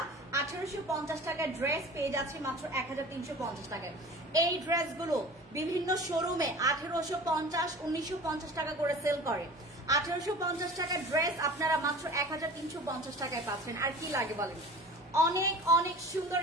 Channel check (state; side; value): normal; both; correlation 0.39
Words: 1850 টাকায় ড্রেস পেয়ে যাচ্ছি মাত্র 1350 টাকায়। এই ড্রেসগুলো বিভিন্ন শোরুমে 1850, 1950 টাকা করে সেল করে। 1850 টাকার ড্রেস আপনারা মাত্র 1350 টাকায় পাচ্ছেন। আর কি লাগে বলেন? অনেক অনেক সুন্দর